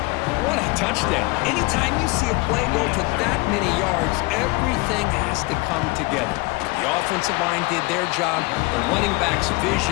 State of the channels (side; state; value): right; quieter; 24.4 dB